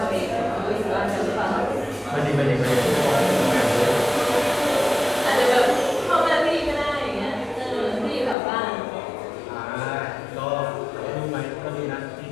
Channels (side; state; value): right; drops out; at 8.3 s